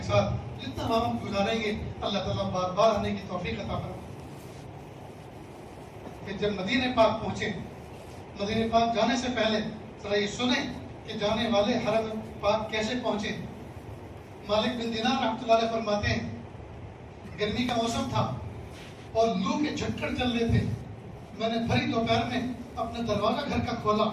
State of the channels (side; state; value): both; identical; correlation 1.00